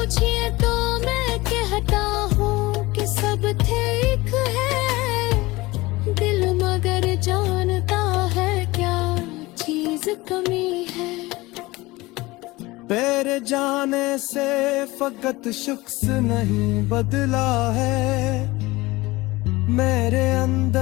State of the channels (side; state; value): right; quieter; 20.8 dB